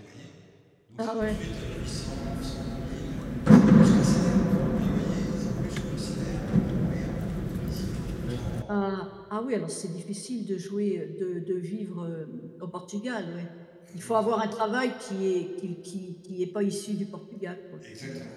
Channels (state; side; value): identical; both; correlation 1.00